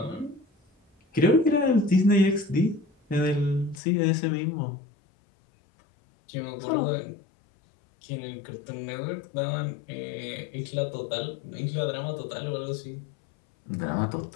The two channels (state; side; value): drops out; right; at 3.8 s